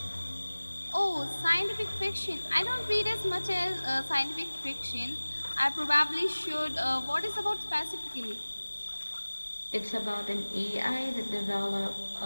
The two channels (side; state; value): both; inverted; correlation -1.00